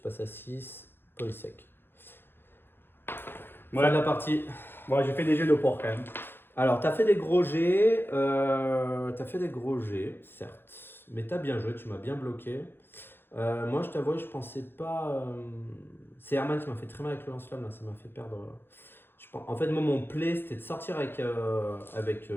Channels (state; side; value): late; right; 0.10 ms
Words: passes à 6. Police sec. Ouais. Fin de la partie. Bon, j'ai fait des jets de porc quand même. Alors, t'as fait des gros jets, certes, mais t'as bien joué, tu m'as bien bloqué. Moi, je t'avoue, je pensais pas. C'est Herman qui m'a fait très mal avec le lance-flamme, là, ça m'a fait perdre. En fait, moi, mon play, c'était de sortir avec